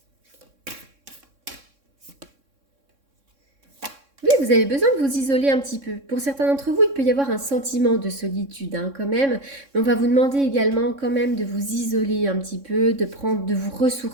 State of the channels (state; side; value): late; left; 3.6 ms